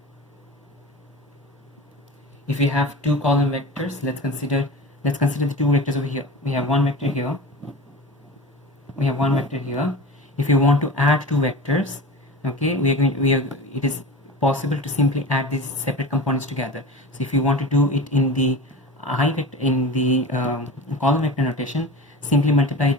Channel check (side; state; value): both; normal; correlation 0.32